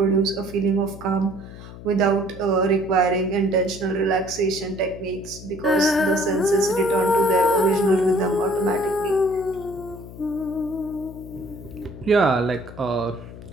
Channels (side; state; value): left; noise; hum, 15 dB below the sound